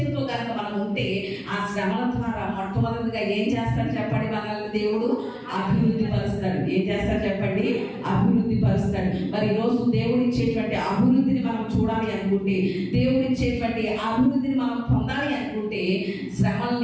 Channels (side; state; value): both; identical; correlation 1.00